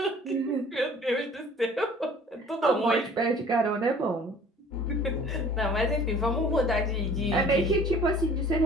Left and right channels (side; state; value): both; normal; correlation 0.50